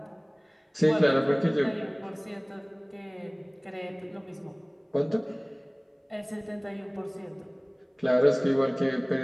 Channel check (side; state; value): both; identical; correlation 1.00